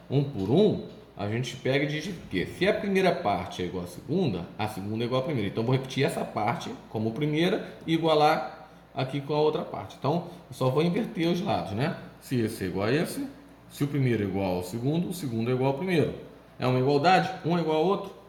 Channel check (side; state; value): both; identical; correlation 1.00